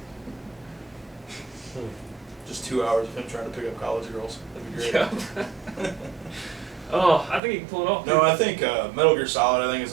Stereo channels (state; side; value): drops out; left; at 7.4 s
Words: Just 2 hours of him trying to pick up college girls. That'd be great. Yeah. Oh, I think you can pull it off. No, I think Metal Gear Solid. I think is